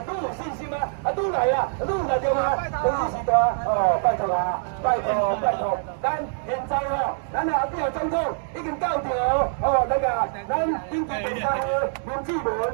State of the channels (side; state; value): left; silent; digital silence